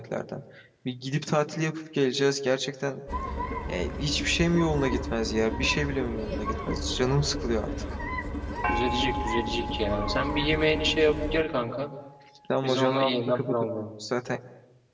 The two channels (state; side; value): identical; both; correlation 1.00